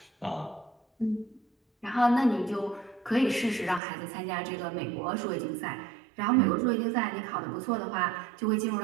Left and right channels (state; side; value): drops out; left; at 3.8 s